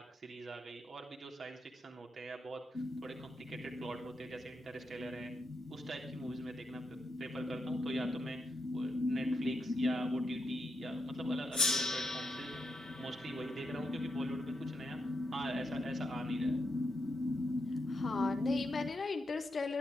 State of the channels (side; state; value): both; normal; correlation 0.83